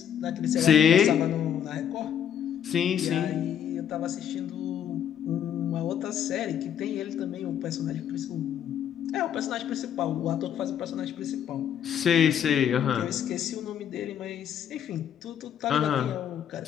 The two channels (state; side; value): quieter; right; 9.3 dB